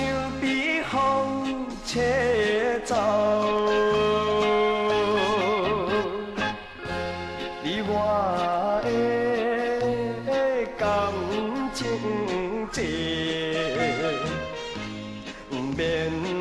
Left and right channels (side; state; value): both; identical; correlation 1.00